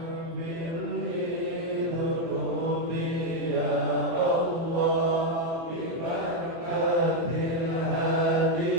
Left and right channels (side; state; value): left; late; 24 ms